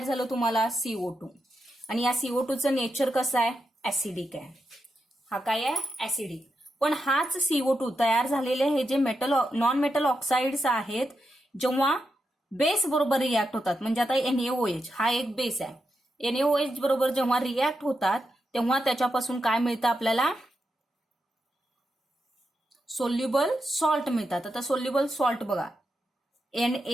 झालं तुम्हाला, CO2. आणि या CO2चं नेचर कसं आहे, ऍसिडिक आहे. हा काय आहे, ऍसिडिक. पण हाच CO2 तयार झालेले हे जे मेटल नॉन मेटल ऑक्साइड्स आहेत, जेव्हा बेस बरोबर रिॲक्ट होतात, म्हणजे आता NaOH हा एक बेस आहे. NaOH बरोबर जेव्हा रिॲक्ट होतात तेव्हा त्याच्यापासून काय मिळतं आपल्याला, सोल्युबल सॉल्ट मिळतात. आता सोल्युबल सॉल्ट बघा,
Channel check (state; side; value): normal; both; correlation 0.86